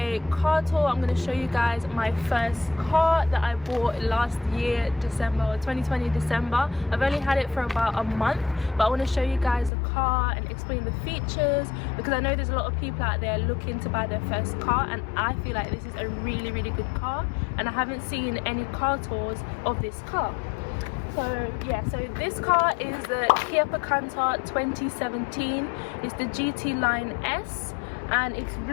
car tour. I'm going to show you guys my first car that I bought last year December, or 2020 December. I've only had it for about a month, but I want to show you guys the car and explain the features, because I know there's a lot of people out there looking to buy their first car, and I feel like this is a really good car, and I haven't seen any car tours of this car. So yeah, so this car is the Kia Picanto 2017. It's the GT Line S and it's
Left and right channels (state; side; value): drops out; right; at 9.7 s